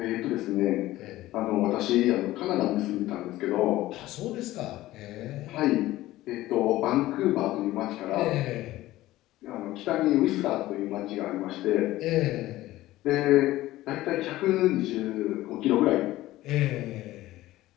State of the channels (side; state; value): right; quieter; 16.2 dB